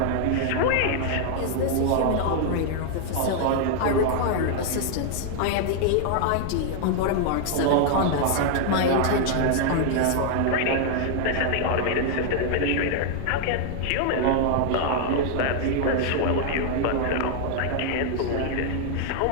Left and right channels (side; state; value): both; different; correlation 0.00